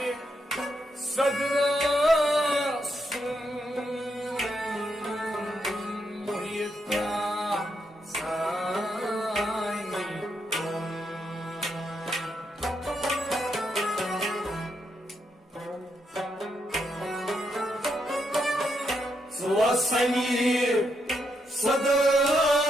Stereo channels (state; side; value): normal; both; correlation 0.80